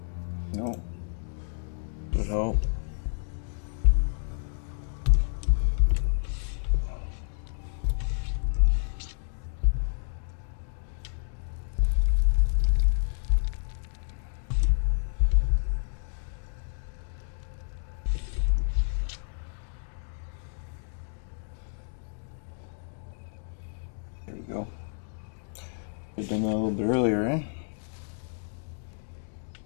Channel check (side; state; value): right; silent; digital silence